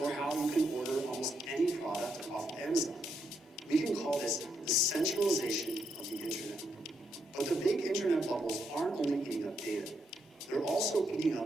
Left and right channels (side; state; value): both; normal; correlation 0.79